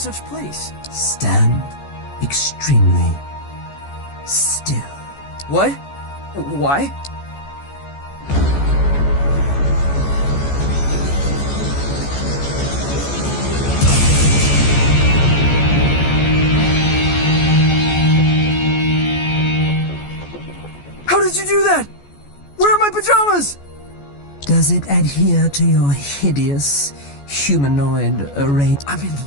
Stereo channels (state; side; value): late; right; 14 ms